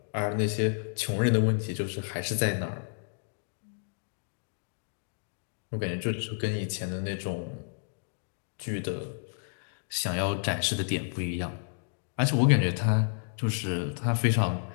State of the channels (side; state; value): right; silent; digital silence